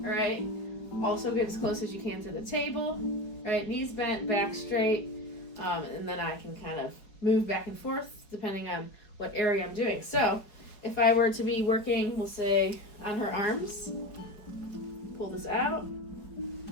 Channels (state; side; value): late; right; 5.0 ms